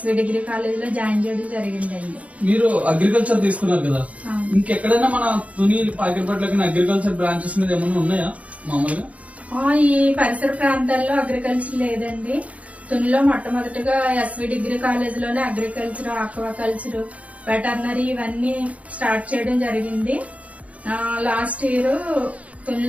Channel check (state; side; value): late; left; 0.067 ms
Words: డిగ్రీ కాలేజ్ లో జాయిన్ చేయడం జరిగిందండి. మీరు అగ్రికల్చర్ తీసుకున్నారు కదా, ఇంకెక్కడైనా మన తుని పాకిరిపట్ల అగ్రికల్చర్ బ్రాంచెస్ మీద ఏమైనా ఉన్నాయా మామూలుగా? ఈ పరిసర ప్రాంతాల్లో అగ్రికల్చర్ లేదండి. తునిలో మొట్టమొదటిగా ఎస్వి డిగ్రీ కాలేజ్ లోనే అగ్రికల్చర్, ఆక్వాకల్చర్, వెటర్నరీ ఇవన్నీ స్టార్ట్ చేయడం జరిగింది. లాస్ట్ ఇయర్